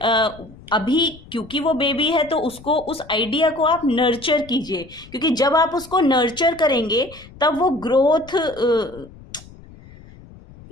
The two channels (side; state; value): left; noise; rumble, 21 dB below the sound